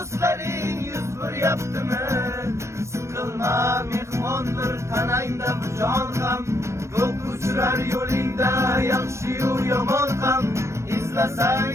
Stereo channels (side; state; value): left; late; 0.13 ms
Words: yuz beryaptimi? Siqilma mehmondir tanangda bu jon ham, ko'p uchrar yo'lingda yaxshi-yu yomon ham.